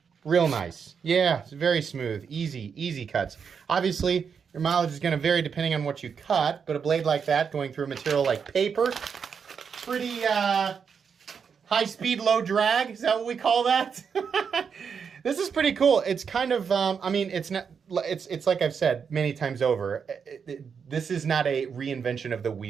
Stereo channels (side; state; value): left; quieter; 6.5 dB